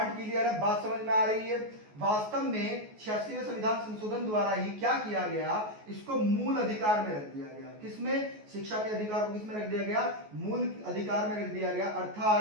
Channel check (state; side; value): late; left; 14 ms